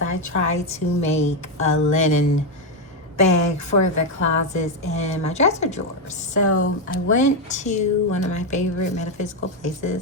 try to make a linen bag for the closets and my dresser drawers. So I went to one of my favorite metaphysical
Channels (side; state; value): both; normal; correlation 0.06